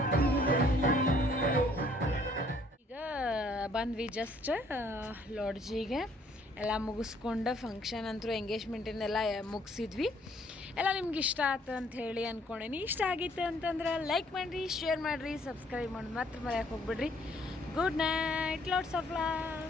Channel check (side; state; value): both; normal; correlation 0.63